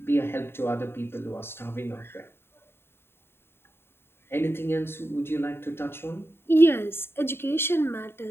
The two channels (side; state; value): right; late; 0.11 ms